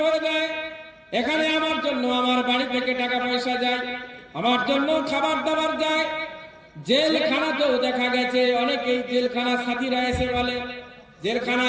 ভরে দেয়, এখানে আমার জন্য আমার বাড়ি থেকে টাকা পয়সা যায়, আমার জন্য খাবার দাবার যায়। জেলখানাতেও দেখা গেছে অনেকেই জেলখানা সাথীরা এসে বলে,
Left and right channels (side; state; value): both; identical; correlation 1.00